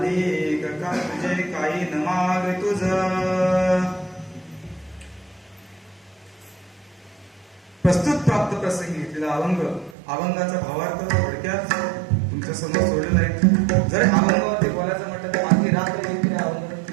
एक का तुझे काही न माग तुझ. प्रस्तुत प्राप्त प्रसंगी घेतलेला अभंगाचा भावार्थ थोडक्यात तुमच्या समोर सोडलेला आहे. जर अभंगावरती बोलायचं म्हटलं तर आणखी रात्र येते अभंग,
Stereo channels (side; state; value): left; drops out; at 10.0 s